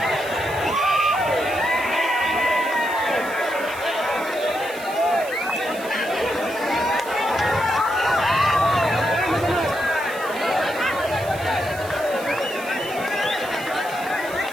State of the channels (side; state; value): right; noise; hiss, 16 dB below the sound